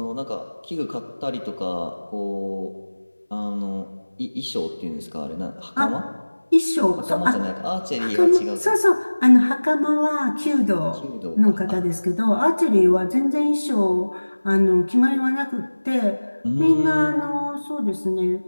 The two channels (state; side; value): inverted; both; correlation -1.00